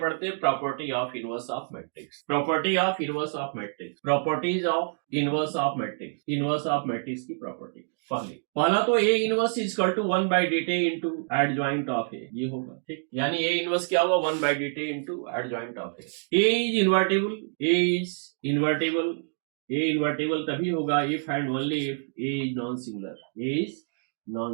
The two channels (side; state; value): left; silent; 60 dB below the other